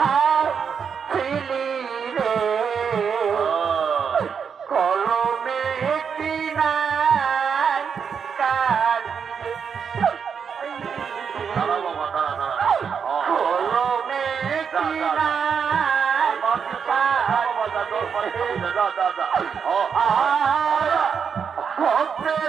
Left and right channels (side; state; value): left; quieter; 6.7 dB